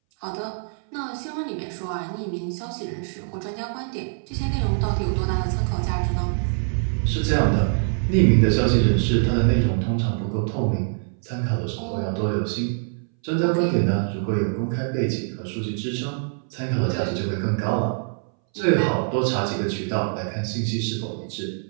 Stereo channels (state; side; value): silent; left; 61 dB below the other